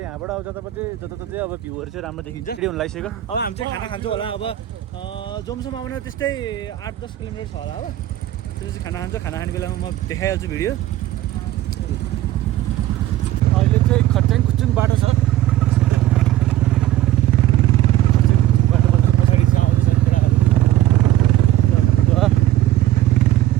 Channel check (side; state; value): left; quieter; 13.8 dB